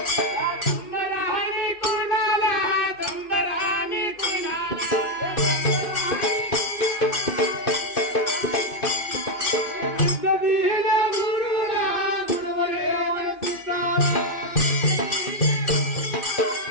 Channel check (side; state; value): right; late; 2.6 ms